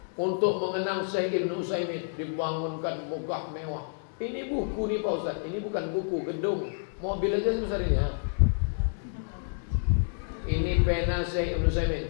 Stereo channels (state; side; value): silent; right; digital silence